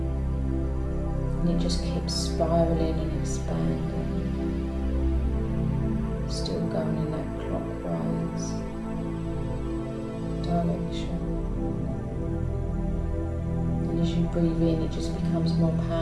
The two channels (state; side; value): identical; both; correlation 1.00